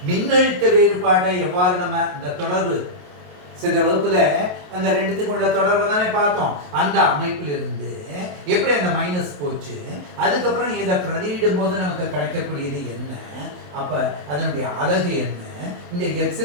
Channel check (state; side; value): late; left; 28 ms